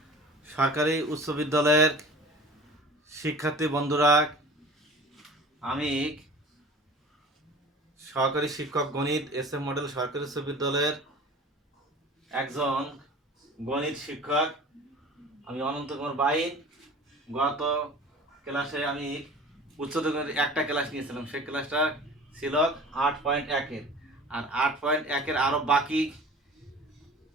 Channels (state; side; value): normal; both; correlation 0.41